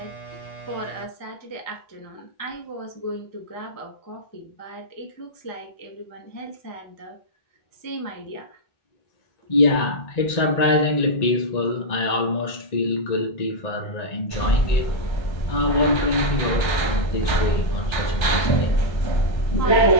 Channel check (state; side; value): late; right; 1.3 ms